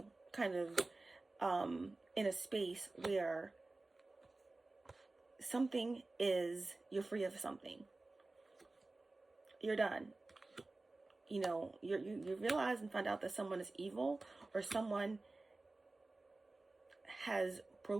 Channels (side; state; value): left; quieter; 3.2 dB